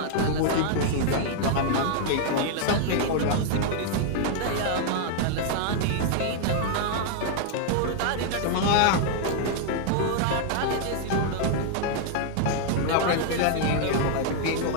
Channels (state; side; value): different; both; correlation 0.00